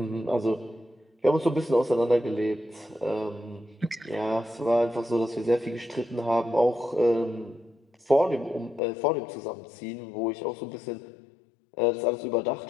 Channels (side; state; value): right; drops out; at 8.8 s